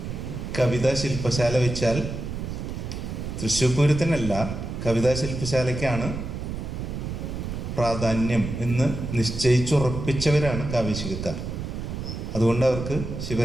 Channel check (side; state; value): right; noise; rumble, 6 dB below the sound